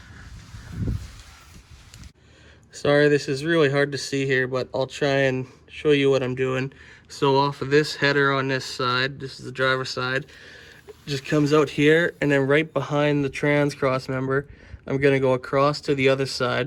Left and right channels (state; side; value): identical; both; correlation 1.00